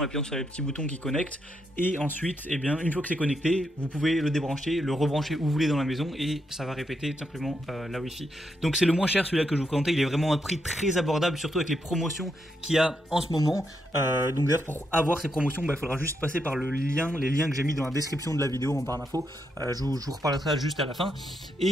appuyant sur les petits boutons qui connectent, et ensuite, eh bien, une fois que c'est connecté, vous pouvez le débrancher, le rebrancher où vous voulez dans la maison, et ça va répéter tout simplement la Wi-Fi. Donc c'est le moins cher celui-là que je vous présente, il est vraiment à un prix très abordable, surtout avec les promotions qu'il y a en ce moment. Donc d'ailleurs pour avoir ces promotions, il faudra juste passer par les liens que j'ai mis dans la description de la vidéo en barre d'infos, je vous reparlerai ça juste à la fin.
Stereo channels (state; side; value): normal; both; correlation 0.81